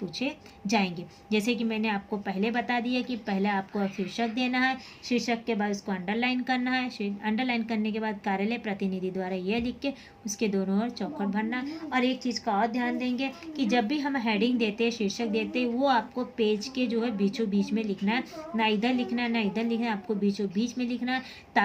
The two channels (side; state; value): both; identical; correlation 1.00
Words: जाएंगे। जैसे कि मैंने आपको पहले बता दिया कि पहले आपको शीर्षक देना है, शीर्षक के बाद उसको अंडरलाइन करना है, अंडरलाइन करने के बाद कार्यालय प्रतिनिधि द्वारा यह लिख के उसके दोनों ओर चौखट भरना। और एक चीज़ का और ध्यान देंगे कि जब भी हम हेडिंग देते हैं, शीर्षक देते हैं, वो आपको पेज के जो है बीचों बीच में लिखना है, ना इधर लिखना है ना इधर लिखना है, आपको बीचों बीच में लिखना है,